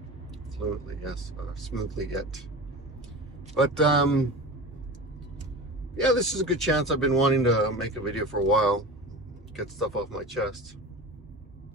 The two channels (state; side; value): normal; both; correlation 0.31